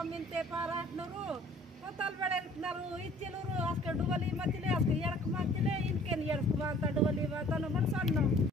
పారాటినారు తోతలు పెడినారు ఇచ్చినరు అసలు డువలి మధ్యలే అసలు ఎడకు మధ్యలే ఇంకేం ఎడకు మాత డువలి మాతను కూడా సన్నాం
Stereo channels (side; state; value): both; normal; correlation 0.53